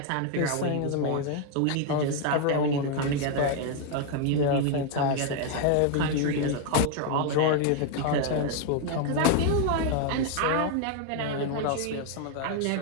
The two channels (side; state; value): both; different; correlation 0.00